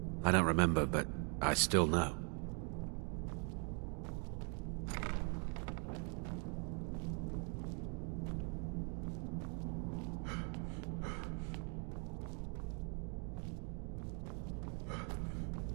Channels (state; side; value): quieter; left; 39.6 dB